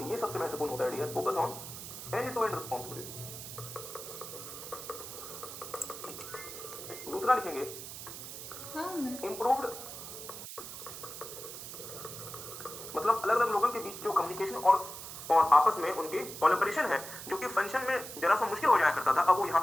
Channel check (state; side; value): noise; right; hiss, 10 dB below the sound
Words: ये सबसे महत्वपूर्ण होता है dear, focus on end to end responsibility. दूसरा लिखेंगे इंप्रूव्ड, मतलब अलग अलग लोगों के बीच जो कम्युनिकेशन और आपस में उनके कोलैबोरेशन है जो कि फंक्शन में जरा सा मुश्किल हो जाया करता था, अब वो यहाँ